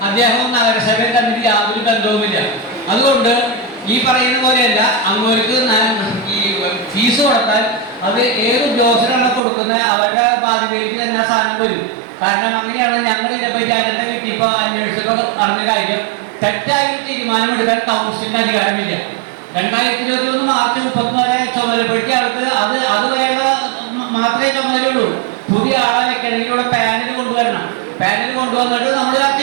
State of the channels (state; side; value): drops out; left; at 9.4 s